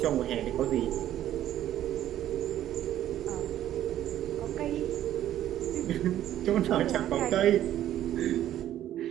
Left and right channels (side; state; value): left; quieter; 12.2 dB